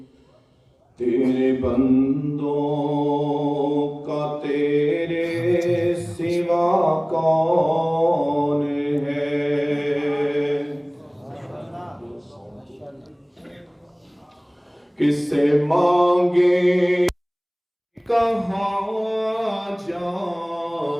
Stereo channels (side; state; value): both; identical; correlation 1.00